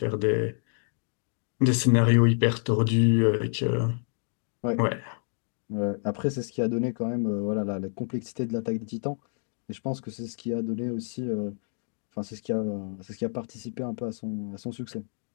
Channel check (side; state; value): right; silent; digital silence